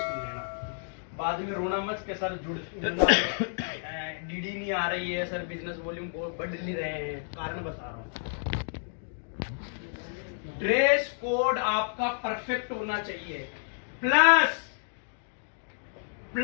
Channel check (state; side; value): silent; right; digital silence